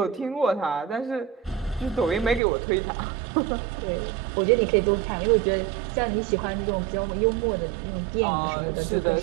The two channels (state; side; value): drops out; left; at 2.4 s